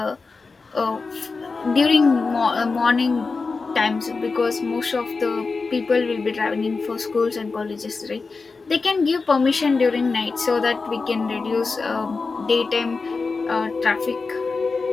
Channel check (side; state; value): right; quieter; 4.3 dB